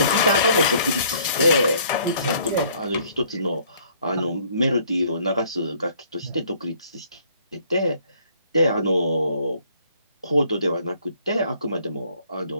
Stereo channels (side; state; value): both; inverted; correlation -0.61